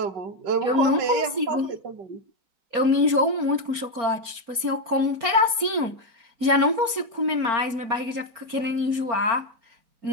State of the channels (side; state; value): left; late; 4.4 ms